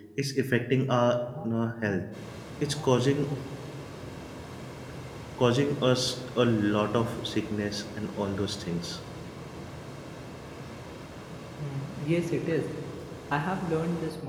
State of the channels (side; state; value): both; identical; correlation 1.00